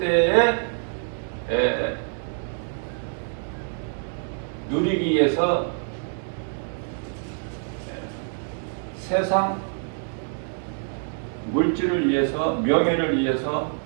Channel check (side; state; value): left; silent; digital silence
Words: 때에 누리기 위해서 세상 물질을 위해서, 명예를 위해서,